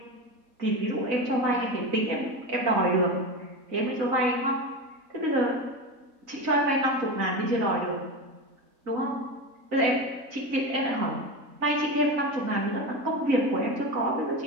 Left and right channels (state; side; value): late; left; 4.0 ms